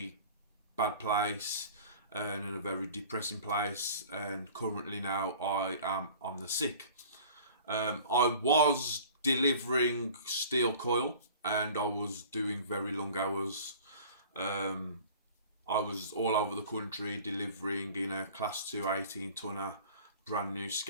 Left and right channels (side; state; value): both; inverted; correlation -0.45